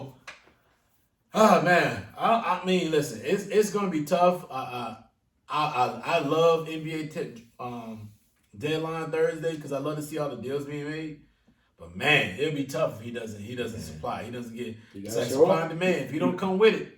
man, I mean, listen, it's gonna be tough. I love NBA deadline Thursday because I love to see all the deals being made. But man, it'll be tough if he doesn't supply. He doesn't get supply and demand. If he don't come with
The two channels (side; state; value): both; identical; correlation 1.00